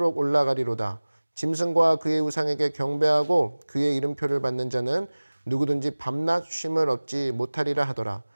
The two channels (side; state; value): both; inverted; correlation -1.00